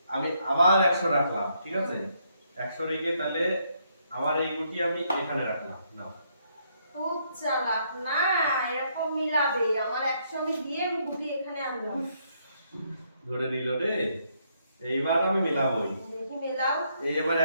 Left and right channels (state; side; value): inverted; both; correlation -0.73